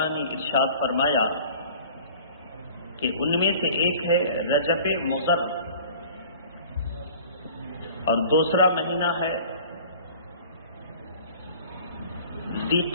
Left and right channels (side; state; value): both; inverted; correlation -0.46